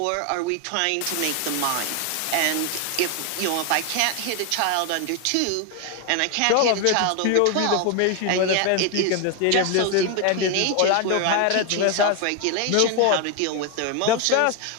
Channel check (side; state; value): both; different; correlation 0.01